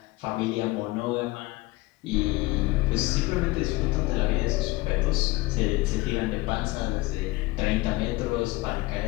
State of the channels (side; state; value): right; quieter; 20.8 dB